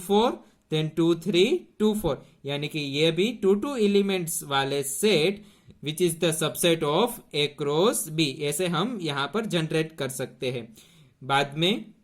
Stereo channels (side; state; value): both; identical; correlation 1.00